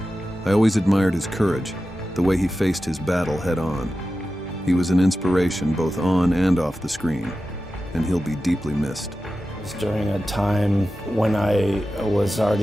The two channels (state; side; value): normal; both; correlation 0.93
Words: I always admired his courage, the way he faced his battle head-on. He was an inspiration both on and off the screen, and he'll be deeply missed. It was during a time when I was